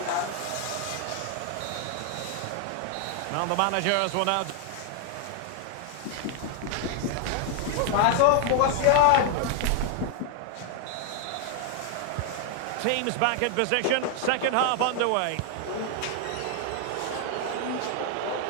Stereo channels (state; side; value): different; both; correlation 0.00